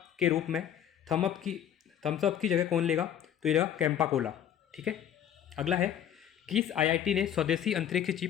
के रूप में थम्स अप की जगह कौन लेगा? तो ये लेगा कैंपा कोला, ठीक है। अगला है, किस IIT ने स्वदेशी अंतरिक्ष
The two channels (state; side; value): quieter; right; 9.9 dB